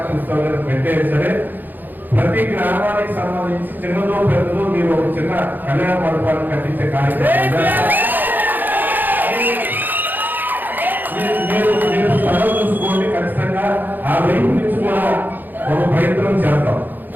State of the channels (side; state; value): left; late; 0.087 ms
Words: ఇస్తాను పెట్టే సరే, ప్రతి గ్రామానికి సంబంధించి చిన్నదో పెద్దదో మీరు ఒక చిన్న కళ్యాణ మండపాన్ని కట్టించే కార్యక్రమం మీరు స్థలం చూసుకోండి. ఖచ్చితంగా ఆ వైపు నుంచి కూడా ఒక ప్రయత్నం చేద్దాం.